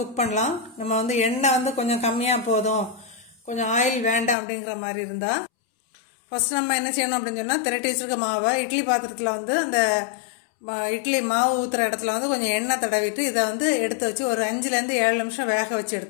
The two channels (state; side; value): drops out; right; at 4.4 s